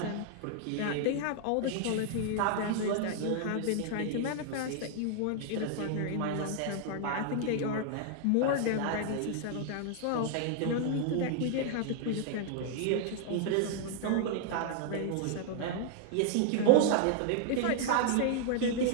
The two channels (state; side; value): different; both; correlation 0.00